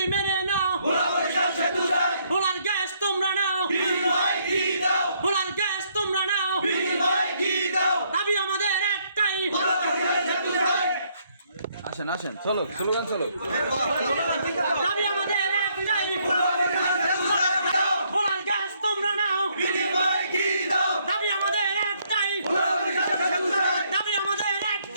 মেনে নাও, ভোলার গ্যাস তোমরা নাও, ভোলার গ্যাস তোমরা নাও, দাবি আমাদের একটাই। আসেন আসেন, চলো স্লোগান চলো। দাবি আমাদের একটাই, ভোলার গ্যাস তোমরা নাও, দাবি আমাদের একটাই, দাবি আমাদের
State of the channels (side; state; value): both; inverted; correlation -0.70